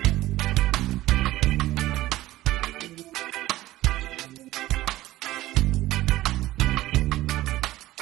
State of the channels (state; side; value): quieter; left; 16.3 dB